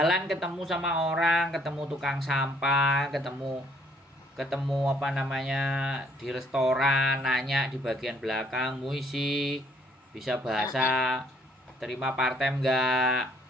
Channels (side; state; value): both; normal; correlation 0.64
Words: ketemu sama orang, ketemu tukang sampah, ketemu apa namanya di restoran, nanya di bagian belakang, muisi, bisa bahasa, terima part-time enggak?